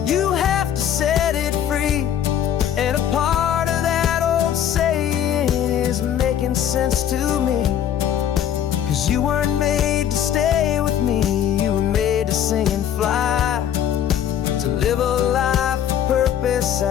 you have to set it free. And a part of that old saying is making sense to me, 'cause you weren't made to stay with me, you were made to sing and fly, to live a life of purpose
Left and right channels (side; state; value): right; quieter; 9.9 dB